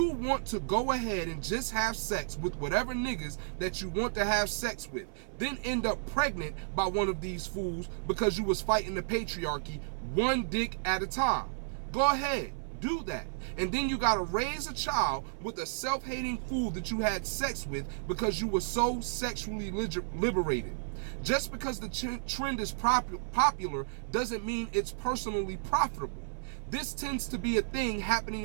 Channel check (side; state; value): left; silent; 56 dB below the other